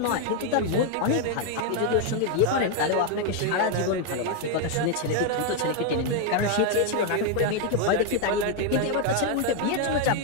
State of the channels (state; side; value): different; both; correlation 0.00